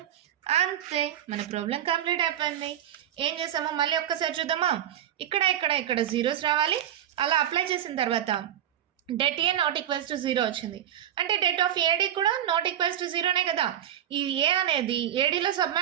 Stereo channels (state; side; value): quieter; left; 10.7 dB